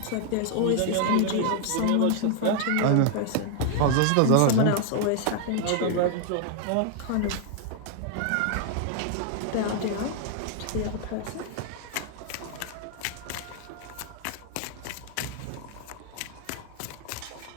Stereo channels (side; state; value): both; different; correlation 0.00